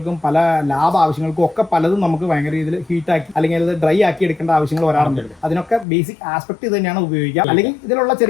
പല ലാബ് ആവശ്യങ്ങൾക്കും ഒക്കെ പലതും നമുക്ക് ഭയങ്കര രീതിയിൽ ഹീറ്റാക്കി അല്ലെങ്കിൽ അത് ഡ്രൈ ആക്കി എടുക്കേണ്ട ആവശ്യങ്ങൾ വരാറുണ്ട്. അതിനൊക്കെ ബേസിക് ആസ്പെക്ട് ഇത് തന്നെയാണ് ഉപയോഗിക്കുക. അല്ലെങ്കിൽ ഇതിലുള്ള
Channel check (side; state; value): right; drops out; at 5.9 s